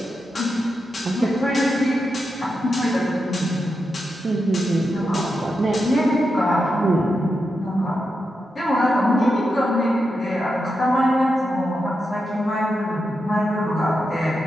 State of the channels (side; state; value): both; normal; correlation 0.87